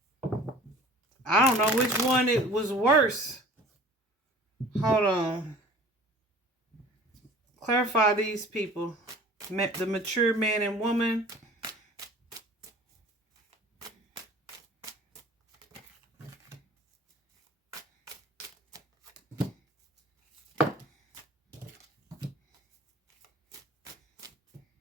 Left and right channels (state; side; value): normal; both; correlation 0.46